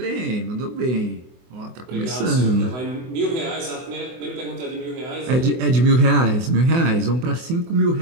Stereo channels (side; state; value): left; late; 24 ms